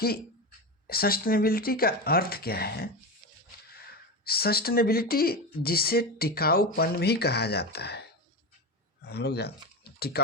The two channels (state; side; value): normal; both; correlation 0.19